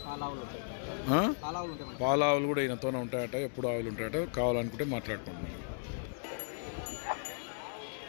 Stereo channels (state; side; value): silent; right; digital silence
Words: పాలావులు కూడా ఈయనతోనే ఉంటాయట. ఎప్పుడు ఆవులు ఉంటాయట. కావాలనుకుంటే మాట్లాడుకుంటున్నాను.